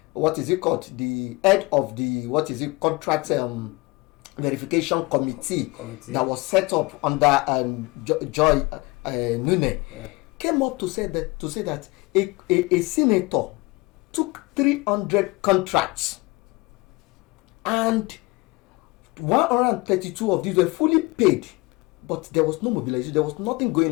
what is it called? The head of the contract verification committee that was set up under Joy Nune. Yeah. Came up to say that a senator took 300 contracts and 132 of these were fully paid, but there was no mobilization, there was nothing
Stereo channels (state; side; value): quieter; right; 24.2 dB